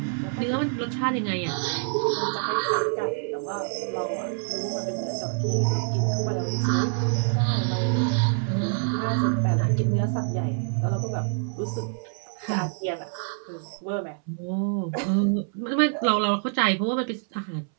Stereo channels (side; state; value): left; silent; 61 dB below the other